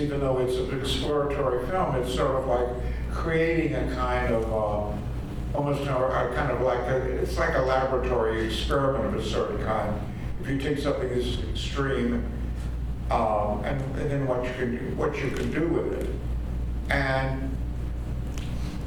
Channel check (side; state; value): both; identical; correlation 1.00